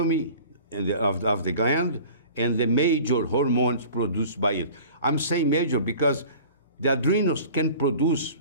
of the gland and the major hormones produced by it. I'm saying major because the adrenals can produce,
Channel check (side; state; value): both; inverted; correlation -0.44